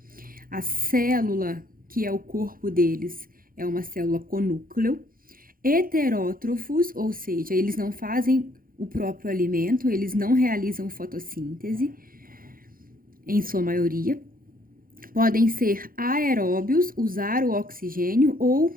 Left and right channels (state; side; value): late; left; 0.42 ms